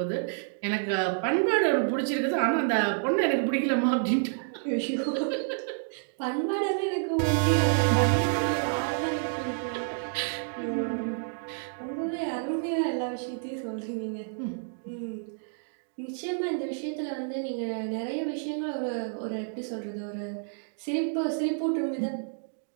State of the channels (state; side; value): silent; left; digital silence